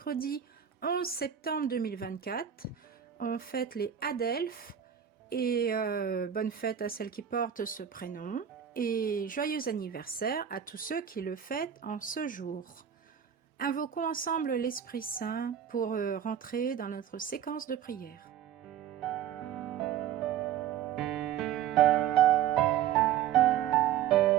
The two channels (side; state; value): left; quieter; 9.5 dB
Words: 11 septembre 2024. On fête les Adelphes et bonne fête à celles qui portent ce prénom et joyeux anniversaire à tous ceux qui le fêtent en ce jour. Invoquons ensemble l'Esprit Saint pour rentrer dans notre séquence de prière.